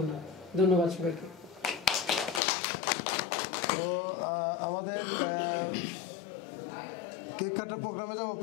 ধন্যবাদ সবাইকে। তো আমাদের কেক কাটার প্রোগ্রামে যাবো,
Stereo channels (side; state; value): right; drops out; at 2.4 s